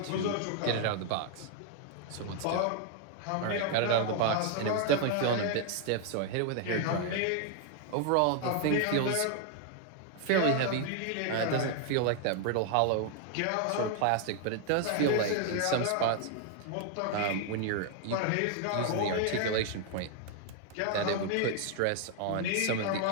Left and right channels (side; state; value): both; different; correlation 0.00